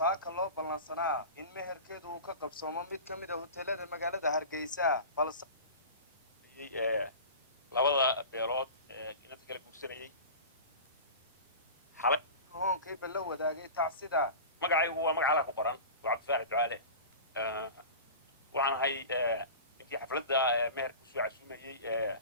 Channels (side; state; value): both; inverted; correlation -0.33